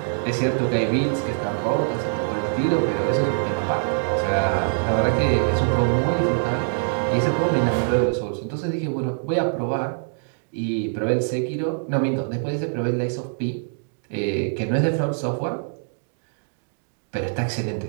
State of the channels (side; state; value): left; silent; digital silence